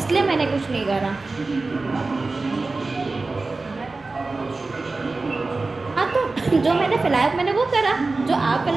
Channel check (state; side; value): quieter; left; 3.6 dB